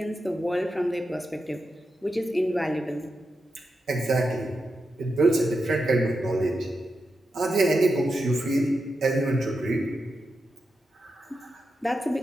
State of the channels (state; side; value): normal; both; correlation 0.88